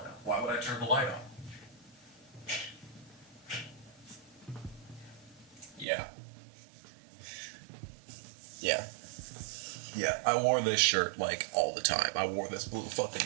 Why would I turn the light off? Yeah. Yeah. Yeah, I wore this shirt, like, all the time. I wore this blue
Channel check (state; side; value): drops out; left; at 5.9 s